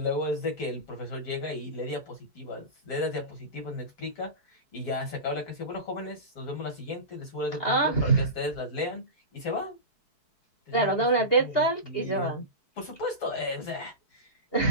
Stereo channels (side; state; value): right; late; 4.6 ms